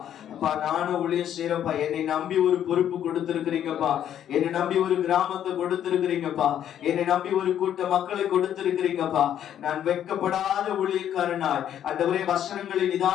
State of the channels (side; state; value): right; quieter; 10.3 dB